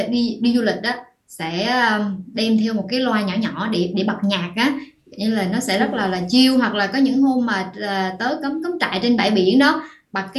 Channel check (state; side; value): identical; both; correlation 1.00